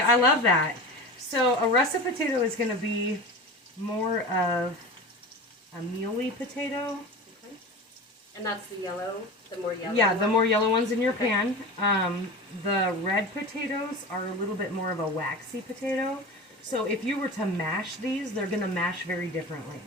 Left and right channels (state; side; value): normal; both; correlation 0.31